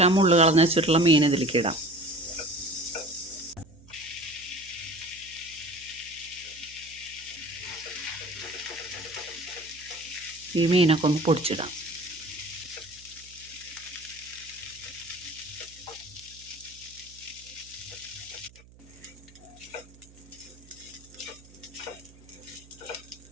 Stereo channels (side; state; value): right; noise; hum, 23 dB below the sound